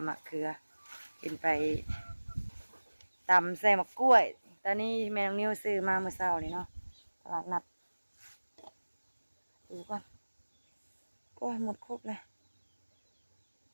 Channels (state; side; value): inverted; both; correlation -1.00